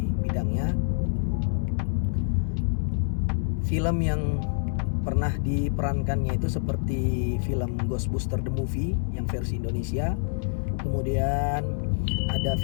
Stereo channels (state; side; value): silent; right; digital silence